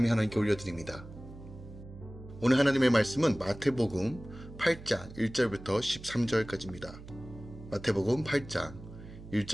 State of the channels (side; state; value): right; noise; hum, 15 dB below the sound